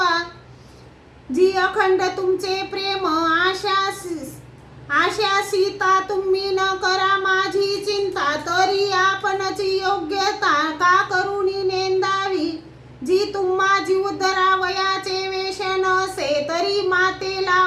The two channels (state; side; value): identical; both; correlation 1.00